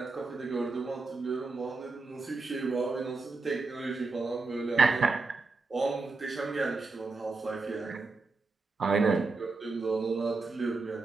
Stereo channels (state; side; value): quieter; left; 3.8 dB